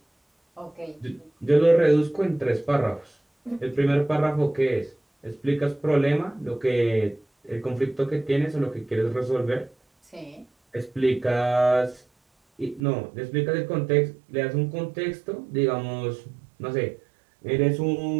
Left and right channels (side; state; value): left; drops out; at 12.8 s